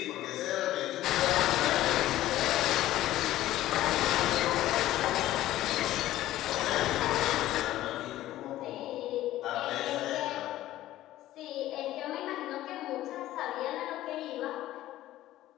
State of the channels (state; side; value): quieter; right; 14.7 dB